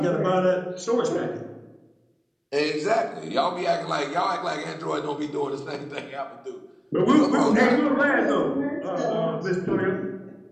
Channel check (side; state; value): both; identical; correlation 1.00